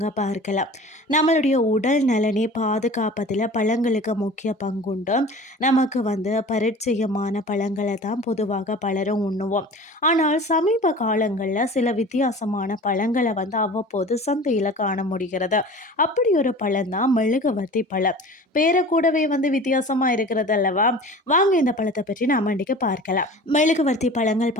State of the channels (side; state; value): both; normal; correlation 0.40